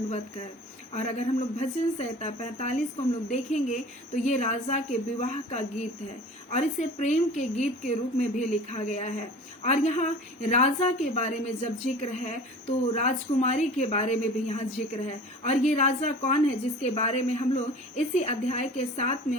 कर। और अगर हम लोग भजन संहिता 45 को हम लोग देखेंगे तो ये राजा के विवाह का गीत है और इसे प्रेम के गीत के रूप में भी लिखा गया है। और यहाँ राजा के बारे में जब जिक्र है तो राजकुमारी के बारे में भी यहाँ जिक्र है। और ये राजा कौन है जिसके बारे में हम लोग इसी अध्याय के 7 में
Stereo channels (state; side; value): normal; both; correlation 0.41